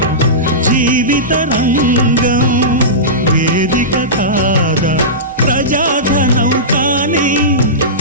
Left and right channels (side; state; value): both; normal; correlation -0.18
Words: జీవిత రంగం వేదిక కాదా ప్రజాధనం కాని